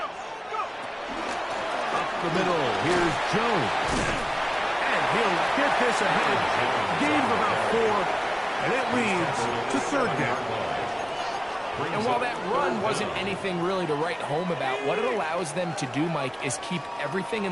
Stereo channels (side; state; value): both; identical; correlation 1.00